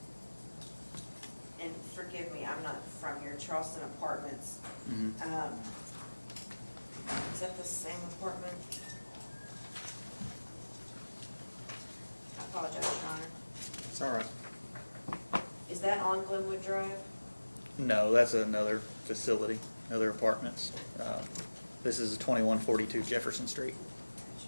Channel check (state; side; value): inverted; both; correlation -1.00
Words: Charleston Apartments. Mhm. Is that the same apartment? I apologize, Your Honor. It's all right. Is that on Glenwood Drive? No, that's another facility, other apartments. This is 2142 Jefferson Street.